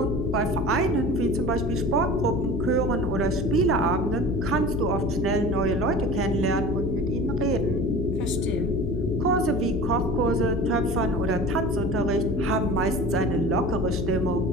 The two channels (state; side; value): noise; left; hum, 4 dB below the sound